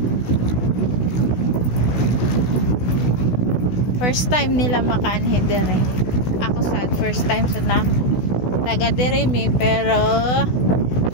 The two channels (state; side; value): late; right; 16 ms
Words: First time nila makaanhe dire. Ako sad first time sa na taga dire mi, pero